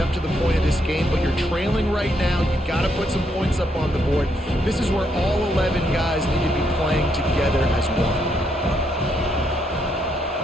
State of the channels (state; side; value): normal; both; correlation 0.76